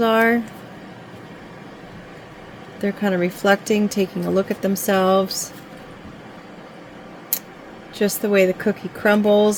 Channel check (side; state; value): both; identical; correlation 1.00